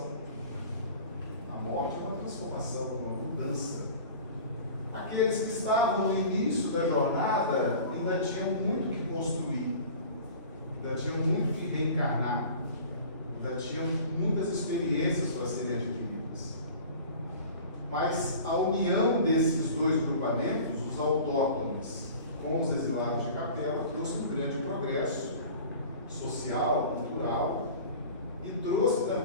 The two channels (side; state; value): both; inverted; correlation -0.41